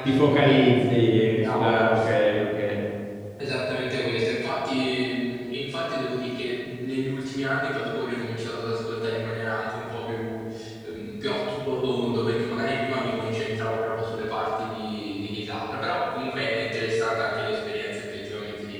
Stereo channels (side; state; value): both; identical; correlation 1.00